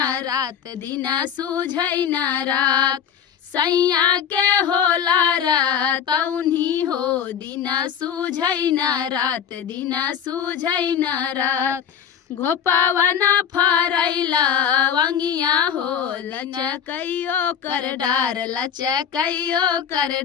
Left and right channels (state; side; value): quieter; right; 8.2 dB